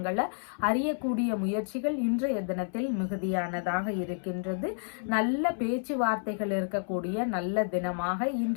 அறியக்கூடிய முயற்சிகள் இன்றைய தினத்தில் மிகுதியானதாக இருக்கின்றது. நல்ல பேச்சுவார்த்தைகள் இருக்கக்கூடிய நல்ல தினமாக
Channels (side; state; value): right; silent; 58 dB below the other